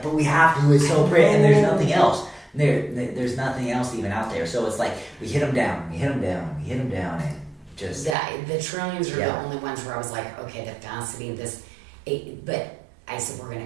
but we have to. It's so pretty, and there's nothing else. There's nothing else even out there. So it's like we hit them down, and just the trillions are the only ones where I was like, okay, the faceting of this, but I said we're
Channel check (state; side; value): drops out; left; at 8.2 s